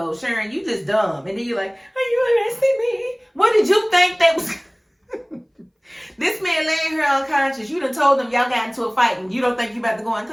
Sharon, you just dumb. And then you're like, are you arresting me? What did you think that was? This man laying here unconscious. You done told them y'all got into a fight and you don't think you about to go in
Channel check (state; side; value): identical; both; correlation 1.00